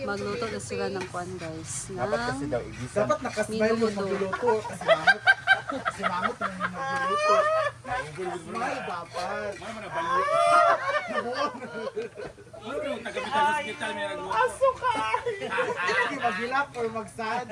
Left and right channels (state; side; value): identical; both; correlation 1.00